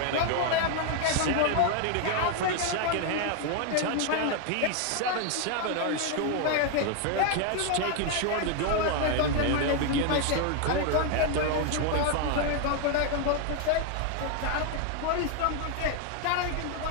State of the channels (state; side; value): different; both; correlation 0.01